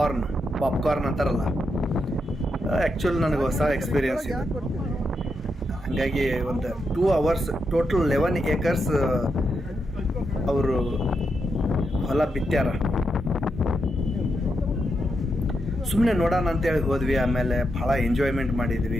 ಪಾಪ್ಕಾರ್ನ್ ಅಂತಾರಲ್ಲ. ಆ್ಯಕ್ಚುಲಿ ನನಗೆ ಹೊಸ ಎಕ್ಸ್ಪೀರಿಯನ್ಸ್ ಇದೆ. ಹಾಗಾಗಿ ಒಂದು 2 hours ಟೋಟಲ್ 11 acres ಅವರು ಹೊಲ ಬಿತ್ತ್ಯಾರ. ಸುಮ್ಮನೆ ನೋಡೋಣ ಅಂತೇಳಿ ಹೋದ್ವಿ. ಆಮೇಲೆ ಭಾಳ ಎಂಜಾಯ್ಮೆಂಟ್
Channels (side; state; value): both; normal; correlation 0.84